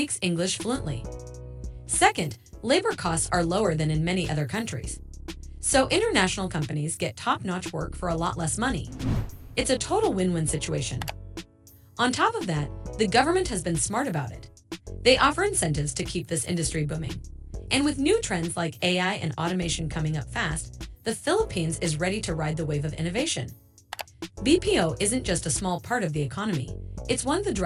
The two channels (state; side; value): identical; both; correlation 1.00